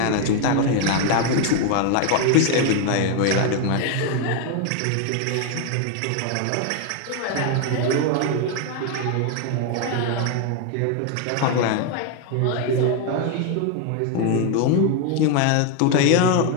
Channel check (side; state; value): both; different; correlation 0.01